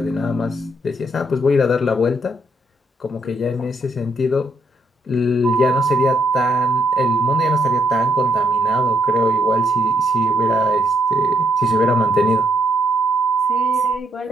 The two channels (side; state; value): both; normal; correlation 0.73